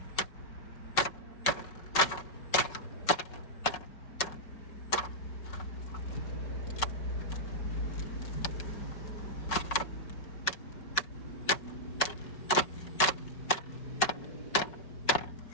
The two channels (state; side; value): late; right; 5.4 ms